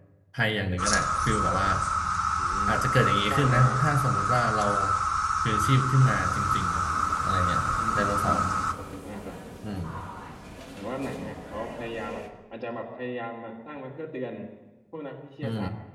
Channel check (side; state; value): both; identical; correlation 1.00